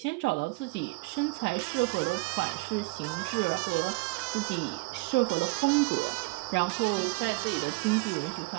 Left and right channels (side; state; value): left; quieter; 26.1 dB